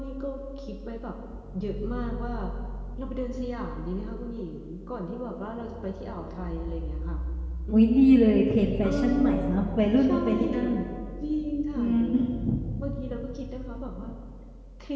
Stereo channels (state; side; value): identical; both; correlation 1.00